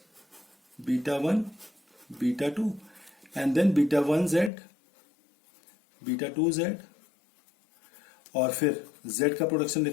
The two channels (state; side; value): drops out; right; at 4.5 s